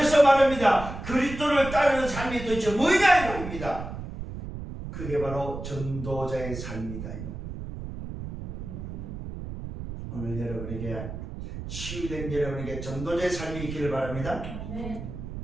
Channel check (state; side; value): noise; right; rumble, 8 dB below the sound